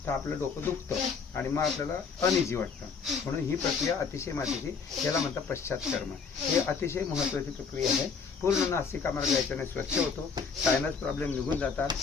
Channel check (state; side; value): quieter; right; 5.5 dB